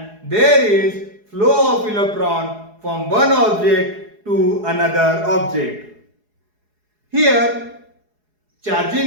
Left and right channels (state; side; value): late; left; 4.8 ms